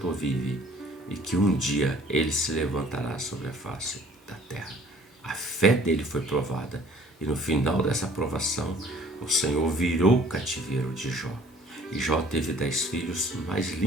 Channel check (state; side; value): normal; both; correlation 0.54